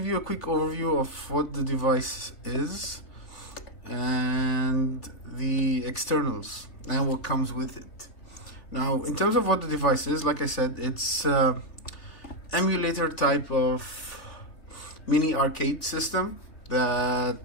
you a quick overview of what the device is and the externals and what comes with it. Now, in terms of what the device is, like I said, it's emulator type of mini arcade system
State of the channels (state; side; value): late; right; 3.5 ms